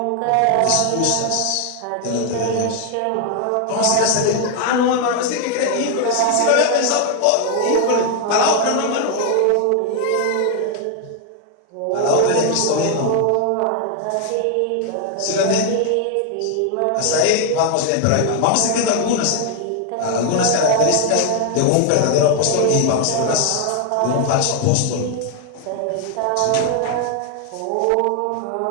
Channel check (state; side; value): different; both; correlation 0.01